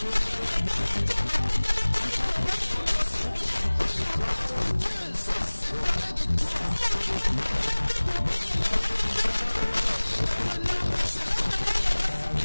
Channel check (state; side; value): inverted; both; correlation -1.00